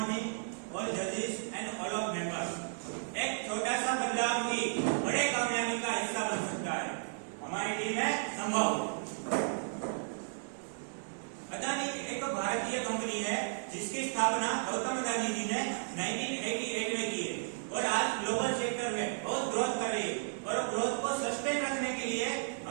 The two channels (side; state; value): left; silent; digital silence